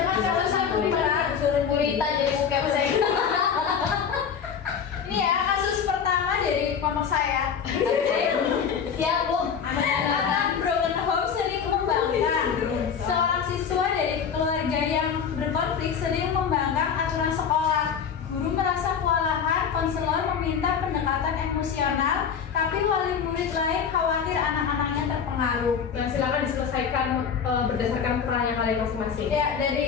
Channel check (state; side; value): quieter; right; 7.1 dB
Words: sekolahan, konselor meminta pendekatan emosional, tapi wali murid lain khawatir anak-anaknya terpengaruh. Nah, silakan diselesaikan berdasarkan perannya kalian masing-masing. Ya,